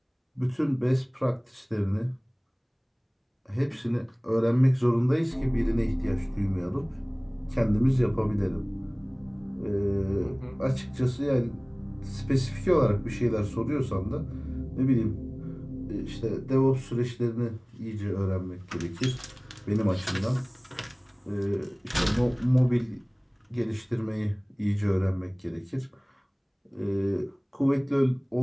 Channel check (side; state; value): both; identical; correlation 1.00